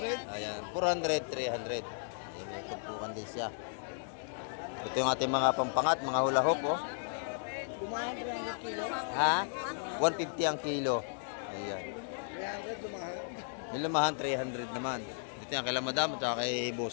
Ayan, 400, 300. Ayan, may tumpukan din siya. Ito yung ating mga pampangat, mga hula hoop, oh. Dumahan 300 kilo. Ha? 150 ang kilo. Ayan. 300 dumahan. Yung lumahan, 300 naman. Dito yan, kay Madam at saka kay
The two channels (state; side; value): silent; right; digital silence